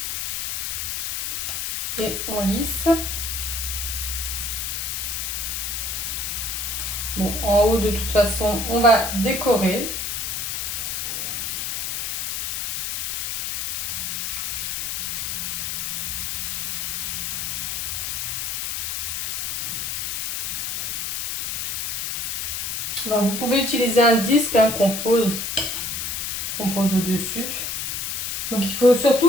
Et on lisse. Bon, en haut, de toute façon, on va décorer. Ben, vous pouvez utiliser un disque hein, qu'on pose au-dessus. Donc il faut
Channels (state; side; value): noise; left; hiss, 2 dB below the sound